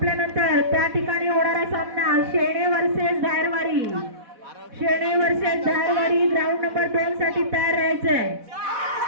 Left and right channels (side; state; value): left; late; 4.1 ms